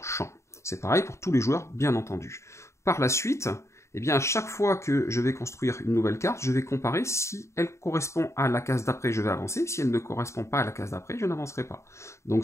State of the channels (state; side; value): late; right; 0.14 ms